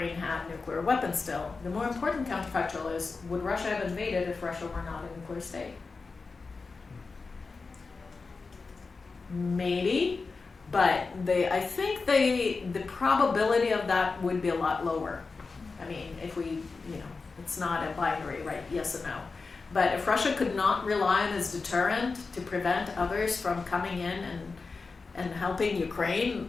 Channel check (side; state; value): right; quieter; 4.3 dB